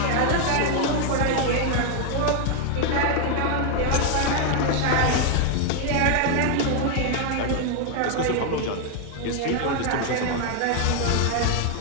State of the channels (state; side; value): different; both; correlation 0.01